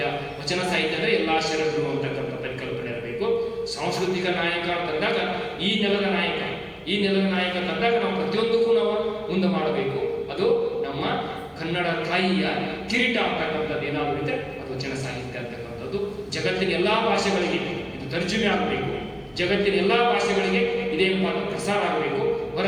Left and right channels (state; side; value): identical; both; correlation 1.00